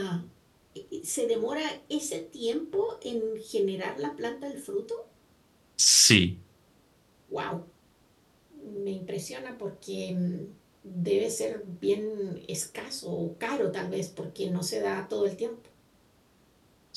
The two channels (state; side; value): identical; both; correlation 1.00